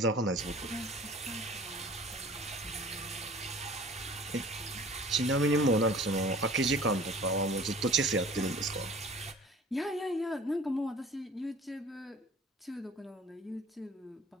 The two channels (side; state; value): both; normal; correlation 0.47